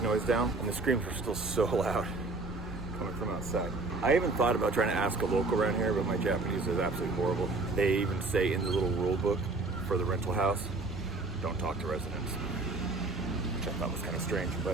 noise down. And the screams were still so loud coming from outside. I even thought about trying to ask a local around here, but my Japanese is absolutely horrible. They even say in the little rule book for the rental house, don't talk to residents, which I thought was kind of strange,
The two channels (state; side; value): quieter; left; 3.4 dB